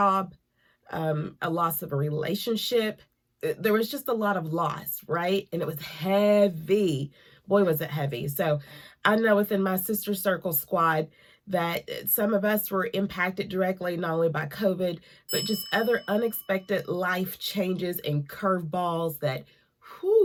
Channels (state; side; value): identical; both; correlation 1.00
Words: a loss of a relationship, there was just a lot of loss, right? And it was heavy. Boy, was it heavy. So I know within my sister circle squad that some of us were impacted directly, not only by COVID, but just other unexpected life changes and curveballs that,